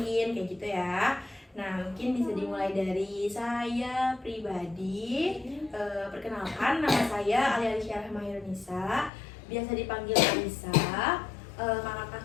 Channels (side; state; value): right; drops out; at 9.1 s